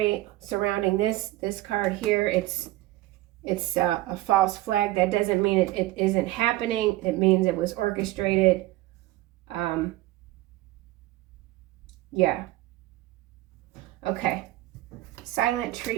surrounding this card here, it's a false flag. That doesn't mean it isn't happening. It means it was orchestrated. Yeah. Okay. Silent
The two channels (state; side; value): quieter; left; 17.1 dB